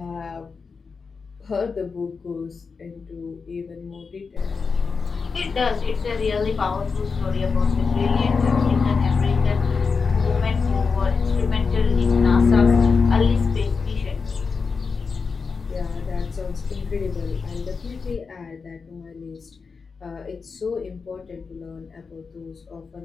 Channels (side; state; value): right; quieter; 5.0 dB